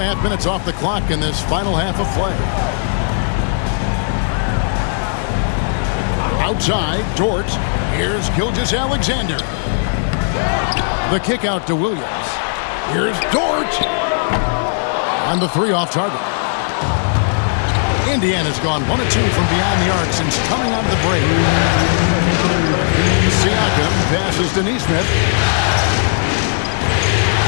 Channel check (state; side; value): silent; right; digital silence